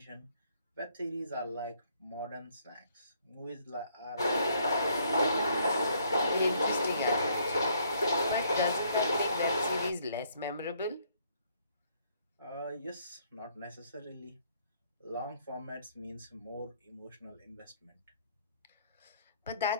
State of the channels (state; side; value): inverted; both; correlation -0.67